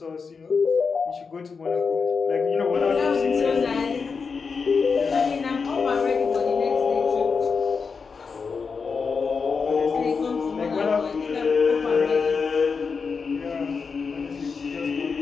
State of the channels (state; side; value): quieter; right; 5.2 dB